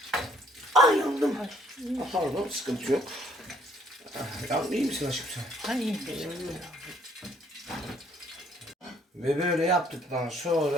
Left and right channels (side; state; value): both; normal; correlation 0.64